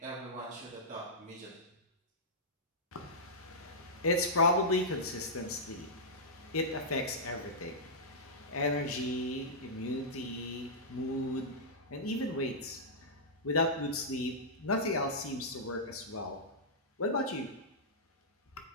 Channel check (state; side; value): normal; both; correlation -0.12